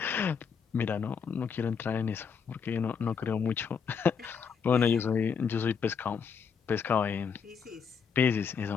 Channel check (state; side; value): quieter; right; 6.4 dB